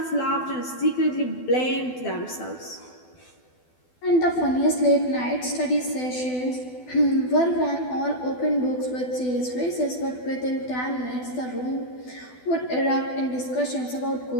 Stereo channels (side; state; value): right; late; 12 ms